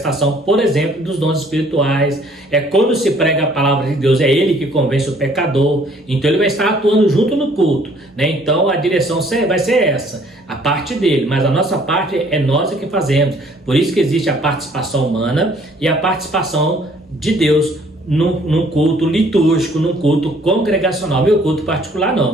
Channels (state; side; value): normal; both; correlation 0.59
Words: por exemplo, dos dons espirituais. É quando se prega a palavra de Deus, é ele que convence o pecador. Então ele vai estar atuando junto no culto, né? Então a direção vai ser essa, a parte dele, mas a nossa parte é nós que fazemos. Por isso que existe a participação humana e a participação de Deus num culto litúrgico, num culto congregacional. Meu culto particular